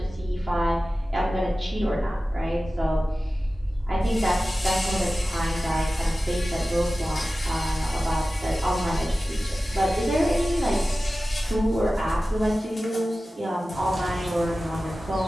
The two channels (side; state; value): both; normal; correlation 0.95